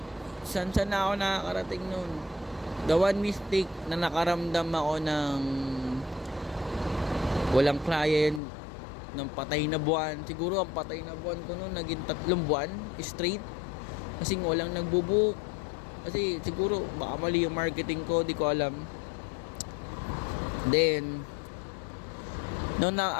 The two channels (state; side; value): drops out; right; at 8.4 s